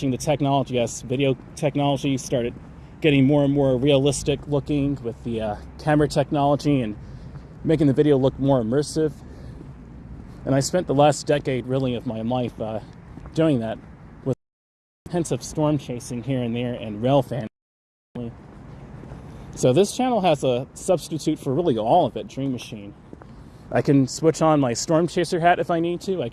the technology as video technology started getting more and more realistic looking with the camera technology and making the video look more immersive. And I spent the last decade really of my life doing that with hints of storm chasing here and there and rail fan. So this channel has a substitute for really all of it, DreamMachine. I can switch on my storm chaser hat if I need to. I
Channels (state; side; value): identical; both; correlation 1.00